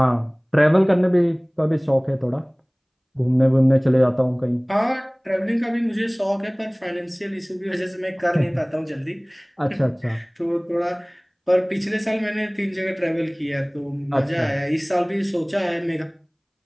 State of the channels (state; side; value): identical; both; correlation 1.00